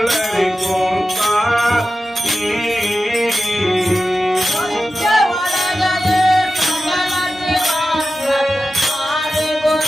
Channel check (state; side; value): normal; both; correlation 0.93